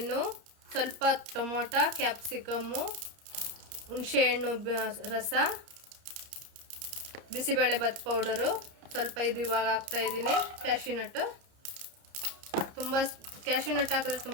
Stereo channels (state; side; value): late; left; 30 ms